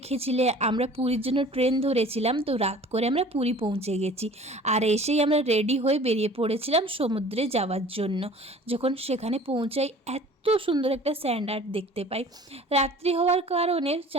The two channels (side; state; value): both; normal; correlation 0.46